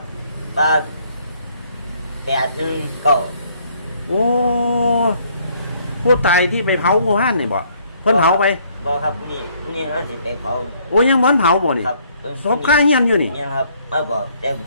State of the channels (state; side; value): inverted; both; correlation -0.65